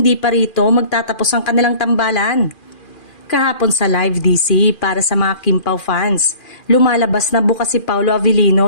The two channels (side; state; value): right; late; 2.4 ms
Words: pa rito magtatapos ang kanilang tambalan. Kahapon sa live DC para sa mga Kim Pao fans, lumalabas na bukas si Paulo